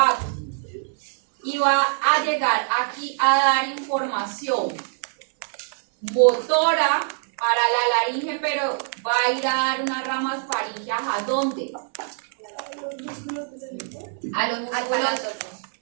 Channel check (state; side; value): silent; left; 63 dB below the other